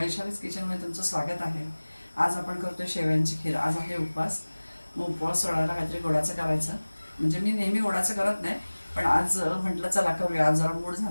किचनमध्ये तुमचं स्वागत आहे. आज आपण करतोय शेवयांची खीर. आज आहे उपवास. मग उपवास सोडायला काहीतरी गोडाचं करायचं. म्हणजे मी नेहमी गोडाचं करत नाही, पण आज म्हटलं चला करूया. आज जरा मूड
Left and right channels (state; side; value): inverted; both; correlation -1.00